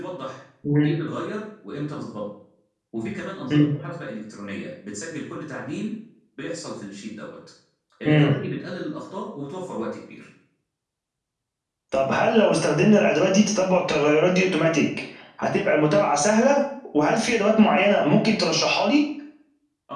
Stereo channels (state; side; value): identical; both; correlation 1.00